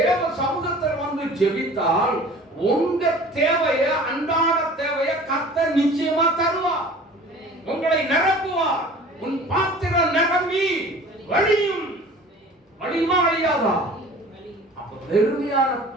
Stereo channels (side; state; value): both; normal; correlation 0.44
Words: சமூகத்தில் வந்து ஜெபித்தால் உங்க தேவைய, அன்றாட தேவைய கர்த்தர் நிச்சயமா தருவார். உங்களை நிரப்புவார். உன் பாத்திரம் நிரம்பி வழியும். வழியுமா வழியாதா? அப்ப பெருமையான